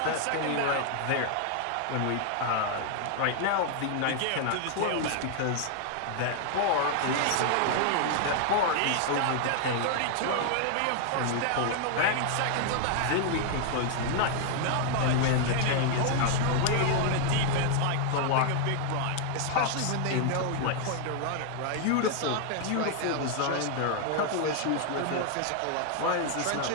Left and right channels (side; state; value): both; different; correlation 0.00